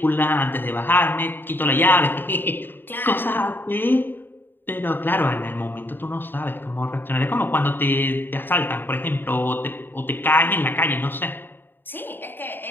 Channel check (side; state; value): right; late; 0.096 ms